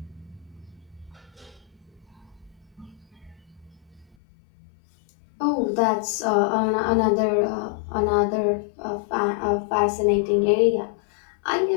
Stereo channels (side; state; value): right; drops out; at 4.2 s